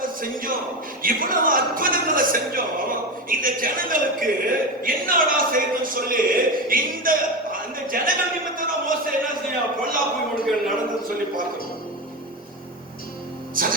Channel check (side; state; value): both; normal; correlation 0.20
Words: செஞ்சோம், இவ்வளவு அற்புதங்களை செஞ்சோம். இந்த ஜனங்களுக்கு என்னடா செய்யணும்னு சொல்லி இந்த ஜனங்கள் நிமித்தம் மோசே என்ன செய்ய பொல்லாப்பு இவனுக்கு நடந்தது சொல்லி பார்க்கணும்.